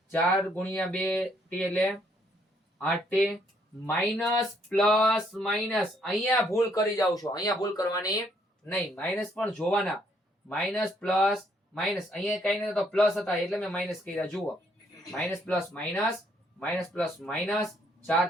4 ગુણ્યા 2t એટલે 8t માઇનસ પ્લસ માઇનસ. અહીંયા ભૂલ કરી જાવ છો, અહીંયા ભૂલ કરવાની નહીં. માઇનસ પણ જોવાના. Minus plus minus. અહીંયા કઈ નહીં તો પ્લસ હતા એટલે મેં માઇનસ કર્યા. જુઓ minus plus minus, minus plus minus 4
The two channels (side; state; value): both; normal; correlation 0.69